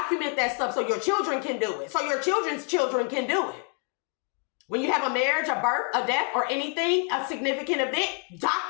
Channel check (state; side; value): quieter; right; 38.0 dB